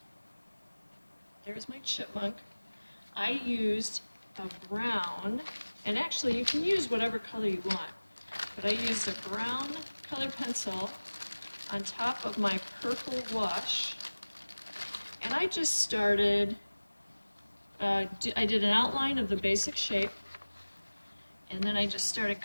there's my chipmunk. I used a brown, and actually you can use whatever color you want, but I used a brown colored pencil on top of my purple wash, and I just started, I did an outline of the basic shape, and then I just started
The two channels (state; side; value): inverted; both; correlation -1.00